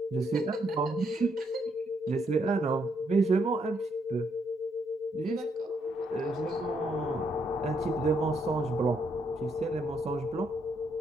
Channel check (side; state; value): both; normal; correlation 0.75